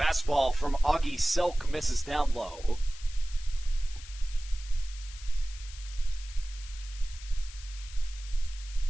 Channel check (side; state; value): left; noise; hiss, 16 dB below the sound